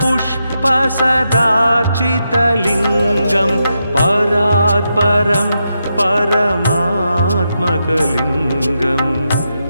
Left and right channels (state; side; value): inverted; both; correlation -0.85